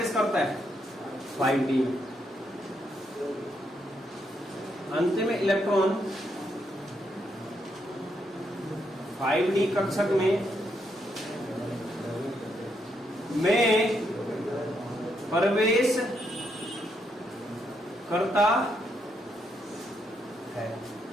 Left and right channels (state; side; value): normal; both; correlation 0.78